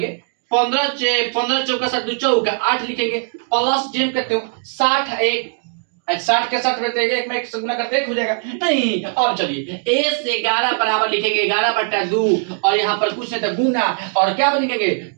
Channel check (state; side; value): silent; left; 64 dB below the other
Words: 15 चौका 60 2 चौका 8 लिखेंगे, प्लस जेम करते हो 60 एक 60 के 60 में एक में 1 से गुना करते 1 हो जाएगा, नहीं। अब चलिए a से 11 बराबर लिखेंगे 11/2, और यहाँ पर कुछ नहीं था गुना, और क्या लिखेंगे